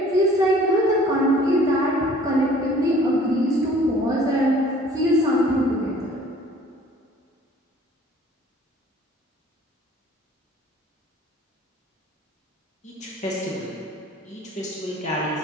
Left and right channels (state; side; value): normal; both; correlation 0.52